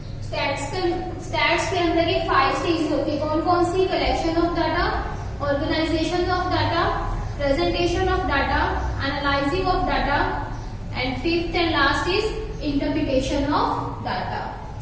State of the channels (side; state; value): both; identical; correlation 1.00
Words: स्टैट्स के अंदर। ये 5 स्टेजेस होती है, कौन कौन सी, collection of data, organisation of data, presentation of data, analysing of data, and fifth and last is interpretation of data.